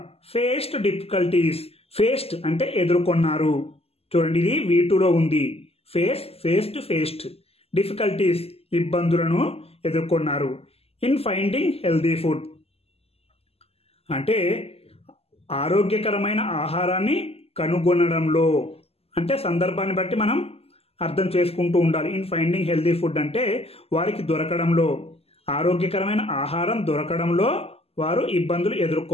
ఫేస్డ్ డిఫికల్టీస్. ఫేస్డ్ అంటే ఎదుర్కొన్నారు. చూడండి, ఇది V2లో ఉంది. ఫేస్డ్ డిఫికల్టీస్ ఇబ్బందులను ఎదుర్కొన్నారు. ఇన్ ఫైండింగ్ హెల్దీ ఫుడ్ అంటే ఆరోగ్యకరమైన ఆహారాన్ని కనుగొనడంలో. అంటే సందర్భాన్ని బట్టి మనం అర్థం చేసుకుంటూ ఉండాలి. ఇన్ ఫైండింగ్ హెల్దీ ఫుడ్ అంటే వారికి దొరకడంలో, ఆరోగ్యకరమైన ఆహారం దొరకడంలో వారు ఇబ్బందులు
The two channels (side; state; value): right; late; 0.29 ms